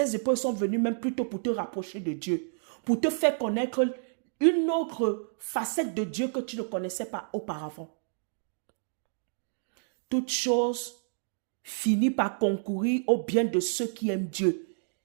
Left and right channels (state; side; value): silent; left; digital silence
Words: épreuves sont venues même plutôt pour te rapprocher de Dieu. Pour te faire connaître une autre facette de Dieu que tu ne connaissais pas auparavant. Toute chose finit par concourir au bien de ceux qui aiment Dieu